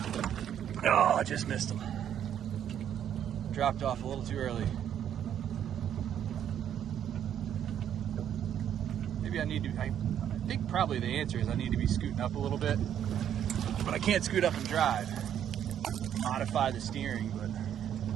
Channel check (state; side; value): quieter; left; 9.8 dB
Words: Oh, I just missed him. Dropped off a little too early. Maybe I need to, I think probably the answer is I need to be scooting up a little bit, but I can't scoot up and drive. Modify the steering, but